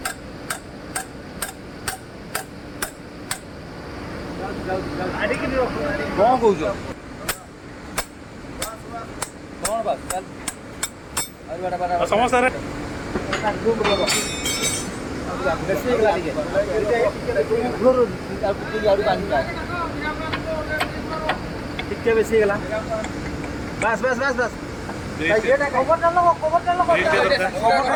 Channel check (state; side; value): identical; both; correlation 1.00